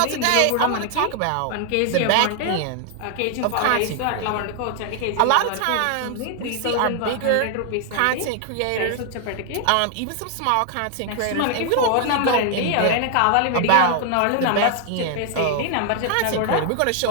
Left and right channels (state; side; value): different; both; correlation 0.00